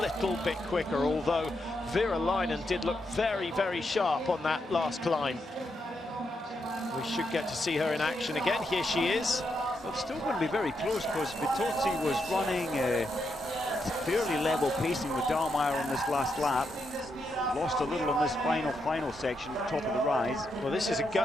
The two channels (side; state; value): both; normal; correlation 0.82